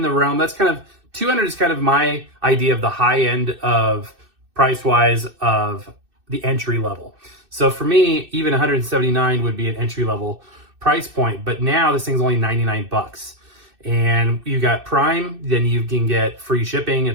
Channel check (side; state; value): left; late; 2.6 ms